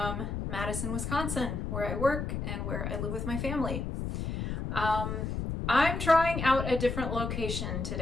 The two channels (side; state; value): left; noise; rumble, 3 dB below the sound